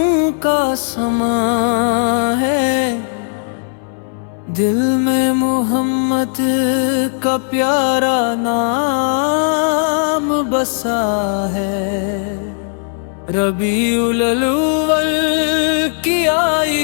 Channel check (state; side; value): silent; right; 64 dB below the other